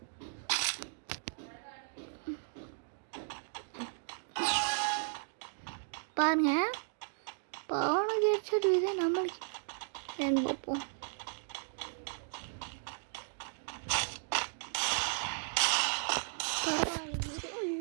பாருங்க அவனுக்கு ஹெட்செட் இது நம்மளுக்கு ஏன்னு பார்ப்போம்.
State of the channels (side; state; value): left; silent; digital silence